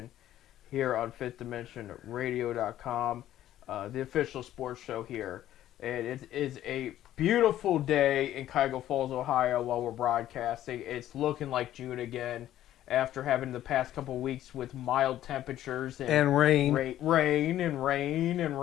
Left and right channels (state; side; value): quieter; right; 12.7 dB